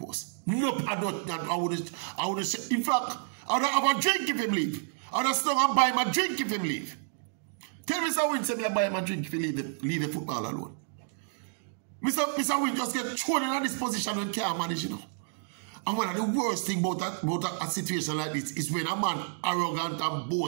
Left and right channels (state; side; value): silent; left; digital silence